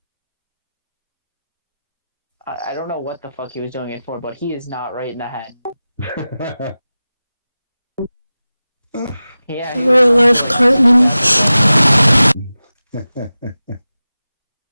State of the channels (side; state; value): both; inverted; correlation -0.96